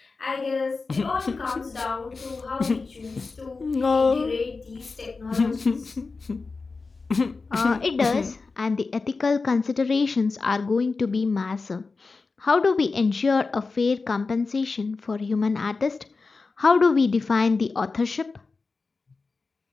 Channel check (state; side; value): quieter; right; 4.2 dB